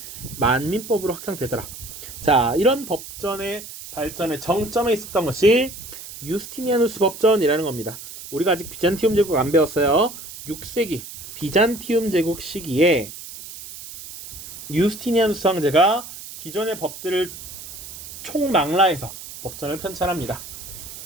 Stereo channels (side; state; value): right; noise; hiss, 13 dB below the sound